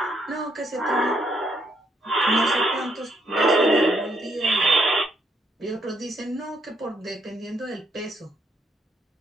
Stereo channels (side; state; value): both; normal; correlation 0.73